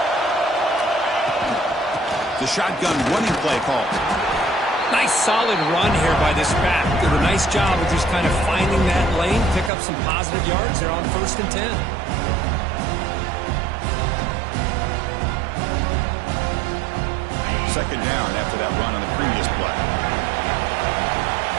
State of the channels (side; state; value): left; drops out; at 9.7 s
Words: The shotgun running play call. Nice solid run here by this back. Did a nice job of just kind of finding that lane, pick up some positive yards. They're on 1st and 10. Second down after that run on the previous play.